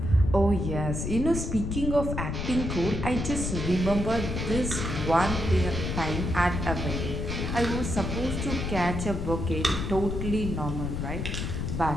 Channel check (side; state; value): left; noise; rumble, 3 dB below the sound